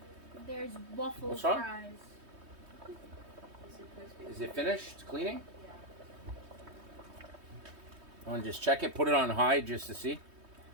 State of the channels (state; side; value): late; left; 3.2 ms